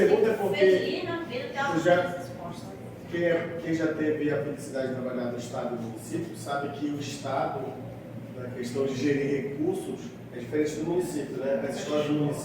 porque Felina, vida, tem uma resposta. quem já teve a felicidade de trabalhar no Estado e no município sabe que o Estado, na questão de gerir recursos, é diferente do município, né? As escolas do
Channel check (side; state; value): both; identical; correlation 1.00